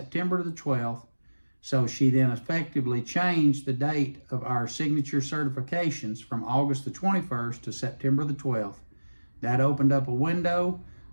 the 12th. So she then effectively changed the date of our signature certifications from August the 21st to September the 12th. That opened up a window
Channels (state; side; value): inverted; both; correlation -1.00